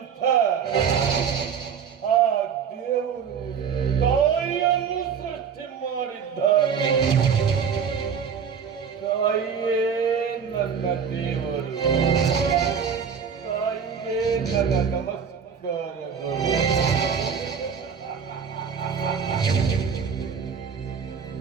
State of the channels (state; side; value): quieter; left; 6.9 dB